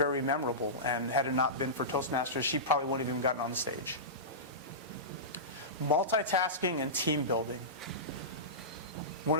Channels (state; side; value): normal; both; correlation -0.18